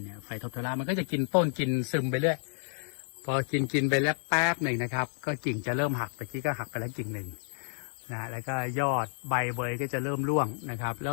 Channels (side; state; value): right; silent; 57 dB below the other